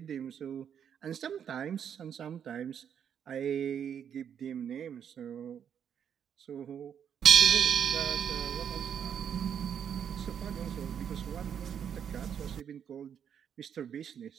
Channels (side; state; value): left; quieter; 8.4 dB